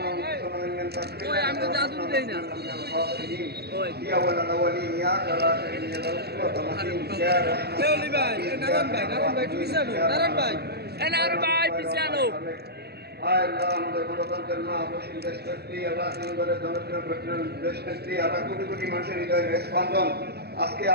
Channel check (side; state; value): left; late; 0.47 ms